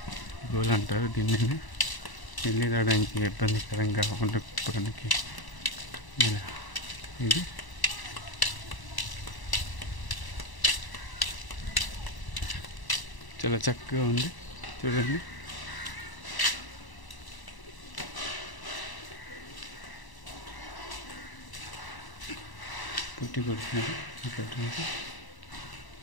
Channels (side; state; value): right; late; 1.0 ms